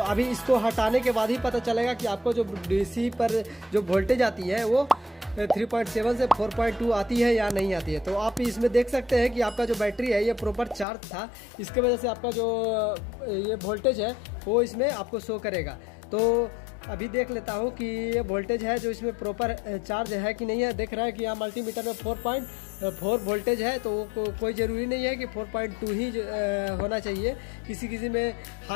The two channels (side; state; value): right; drops out; at 10.9 s